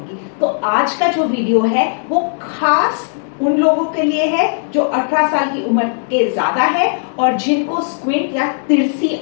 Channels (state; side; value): silent; right; digital silence